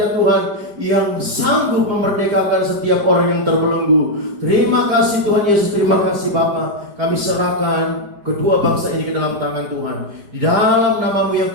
Tuhan yang sanggup memerdekakan setiap orang yang terbelenggu. Terima kasih Tuhan Yesus, terima kasih Bapa. Kami serahkan kedua bangsa ini ke dalam tangan Tuhan. Di dalam nama-Mu yang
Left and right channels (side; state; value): left; late; 4.9 ms